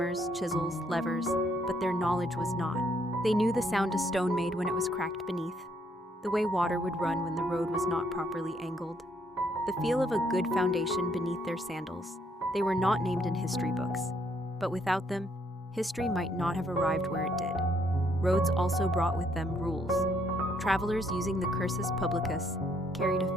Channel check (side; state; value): both; normal; correlation 0.70